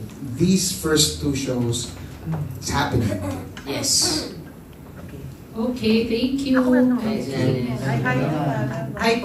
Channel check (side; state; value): both; identical; correlation 1.00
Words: these first 2 shows, it's happening. Yes. Okay, thank you. Hi